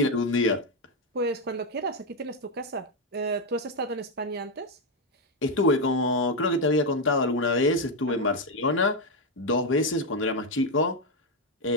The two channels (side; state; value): both; normal; correlation 0.04